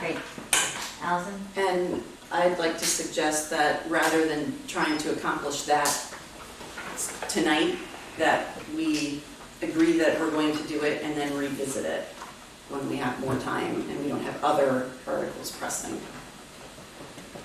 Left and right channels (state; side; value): identical; both; correlation 1.00